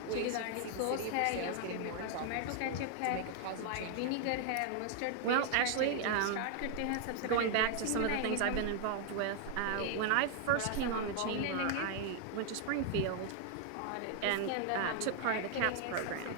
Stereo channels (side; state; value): both; different; correlation 0.00